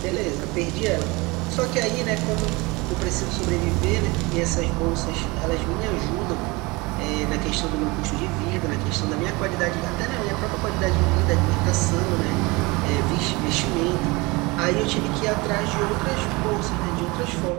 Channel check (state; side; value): quieter; left; 24.6 dB